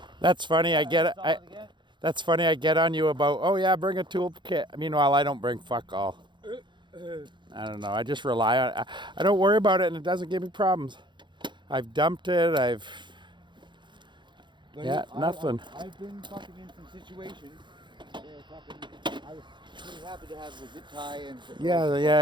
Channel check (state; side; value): late; left; 0.23 ms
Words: That's funny. That's funny. I get on you about, oh yeah, bring a toolkit. Meanwhile, I don't bring fuck all. I don't know. I just rely on. I don't worry about it, and it doesn't give me problems. I've dumped it. Nothing. I've been fucking in some situations where fucking I was pretty happy to have a zip tie and.